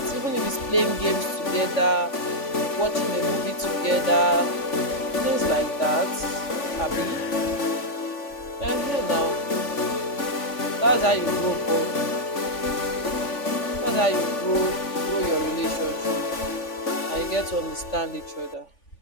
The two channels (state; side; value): late; right; 3.5 ms